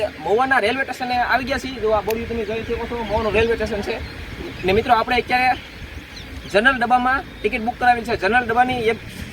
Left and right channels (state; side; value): identical; both; correlation 1.00